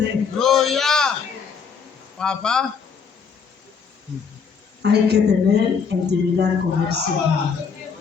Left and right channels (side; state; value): right; quieter; 6.1 dB